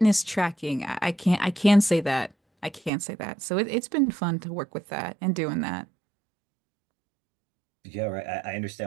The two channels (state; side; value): drops out; left; at 2.9 s